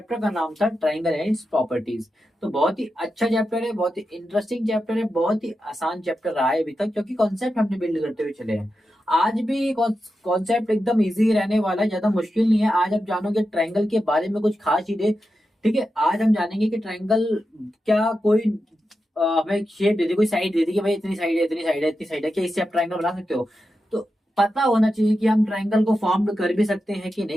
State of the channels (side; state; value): both; normal; correlation 0.89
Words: का नाम था ट्राइंगल एंड इट्स प्रॉपर्टीज। तो बहुत ही अच्छा चैप्टर है, बहुत ही इंटरेस्टिंग चैप्टर है, बहुत ही आसान चैप्टर रहा है अभी तक, क्योंकि कॉन्सेप्ट हमने बिल्ड करते हुए चले हैं। आज भी कॉन्सेप्ट एकदम इजी रहने वाला है, ज्यादा मुश्किल नहीं है। आज आप जानोगे ट्राइंगल के बारे में कुछ खास चीजें। ठीक है, आज हम जानेंगे कि ट्रायंगल क्या कोई हमें शेप दे दी, कोई साइड दे दी कि भाई इतनी साइड है, इतनी साइड है, इतनी साइड है, क्या इससे आप ट्रायंगल बना सकते हो? तो पता होना चाहिए कि हम ट्रायंगल को फॉर्म कर भी सकते हैं कि